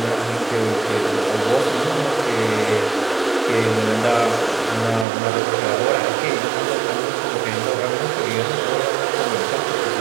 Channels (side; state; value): left; drops out; at 5.1 s